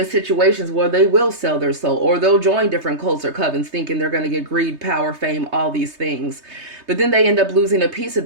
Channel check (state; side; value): late; left; 3.2 ms